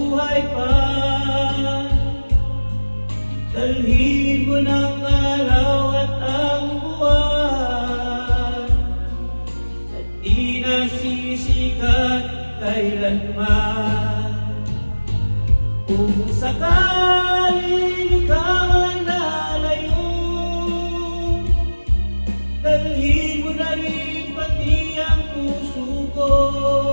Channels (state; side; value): inverted; both; correlation -1.00